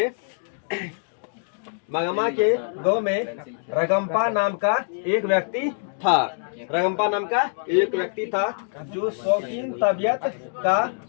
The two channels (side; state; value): right; silent; digital silence